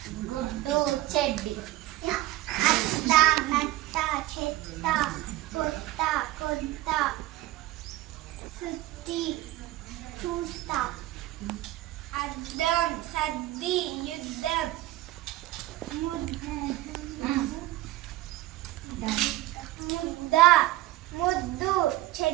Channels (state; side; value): quieter; left; 16.5 dB